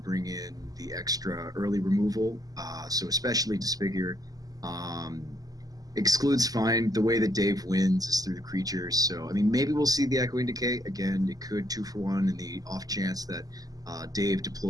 in the extra early removal, so especially Disfigure. Exclude's fine. The way that Dave wins is through the creatures. So, I mean, maybe we'll see the Echoing Decay. Again, it could 2-for-1 in the off chance that Dave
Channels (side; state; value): left; late; 0.18 ms